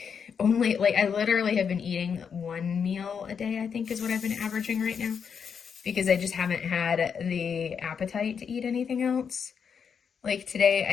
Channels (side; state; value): right; quieter; 6.8 dB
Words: I literally have been eating one meal a day, I think is what I've been averaging right now, because I just haven't had the appetite to eat anything else. Like today,